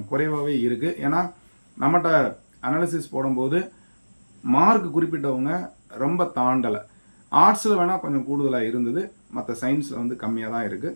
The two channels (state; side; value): inverted; both; correlation -1.00